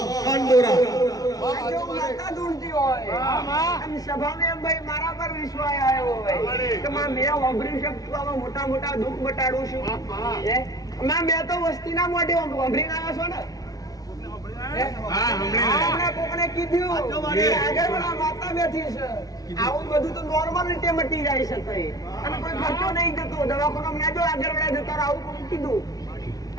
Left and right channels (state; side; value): late; right; 0.18 ms